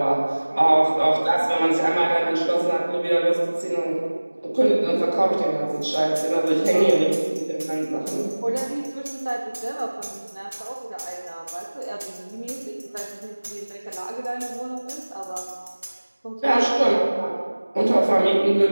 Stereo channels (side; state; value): both; inverted; correlation -1.00